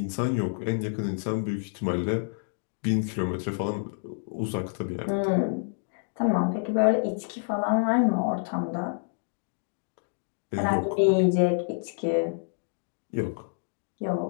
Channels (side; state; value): right; silent; digital silence